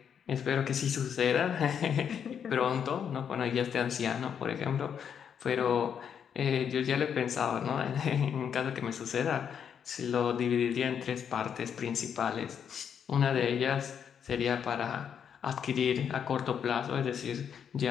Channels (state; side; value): quieter; right; 7.9 dB